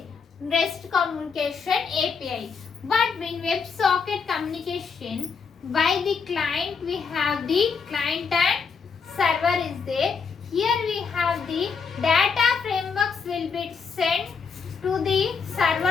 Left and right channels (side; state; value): right; quieter; 5.6 dB